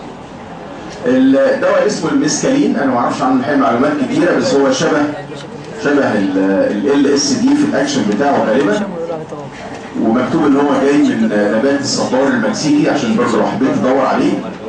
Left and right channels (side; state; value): both; identical; correlation 1.00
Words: الدواء اسمه الميسكالين، انا ما اعرفش عنه الحقيقه معلومات كتيره، بس هو شبه LSD في الاكشن بتاعه غالبا، ومكتوب ان هو جاي من نبات الصبار المكسيكي، عشان برضه لو حبيت تدور عليه